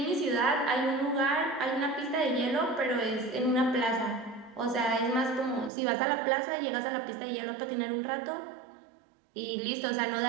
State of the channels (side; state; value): left; drops out; at 5.7 s